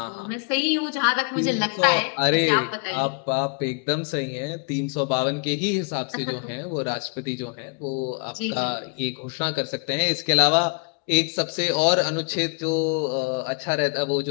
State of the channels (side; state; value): right; quieter; 38.2 dB